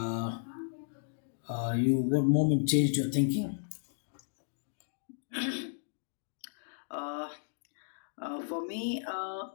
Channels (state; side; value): silent; right; digital silence